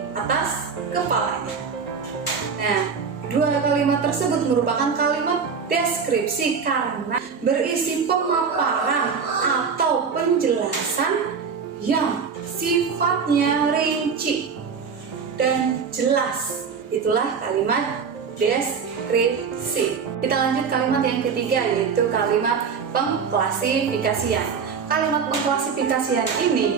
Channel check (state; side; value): quieter; left; 5.9 dB